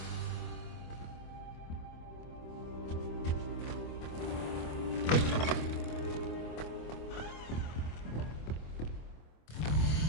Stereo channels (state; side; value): late; right; 25 ms